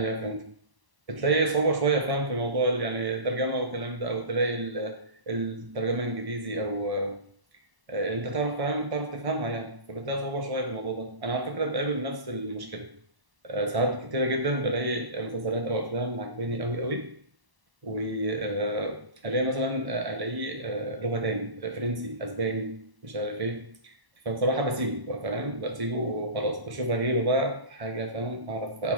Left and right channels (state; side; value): late; left; 1.1 ms